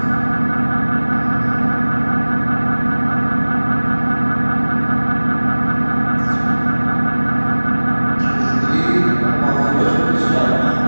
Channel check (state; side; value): inverted; both; correlation -1.00